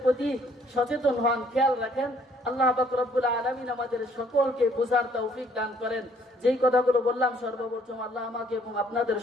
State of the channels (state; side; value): normal; both; correlation 0.63